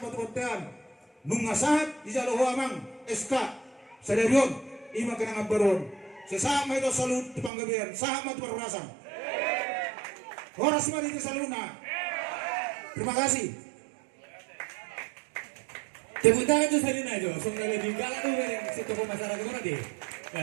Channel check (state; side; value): drops out; left; at 7.5 s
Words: mototean. Nunga saat di jalo amang SK sadarion ima kena ngabaron. Sesama itu salut di panggabean, sama itu perurasan. Horas mah di saluna. Terima kasih. Tepuk tangan tuh salina itu. Sungguh lebih galak tuh yang si tokoh masyarakat mana deh.